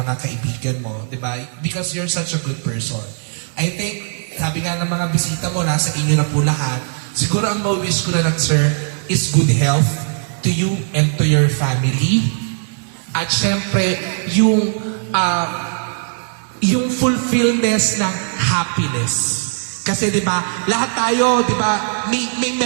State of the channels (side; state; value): left; silent; 59 dB below the other